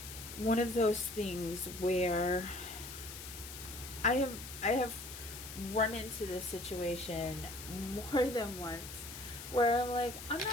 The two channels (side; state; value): left; noise; hiss, 11 dB below the sound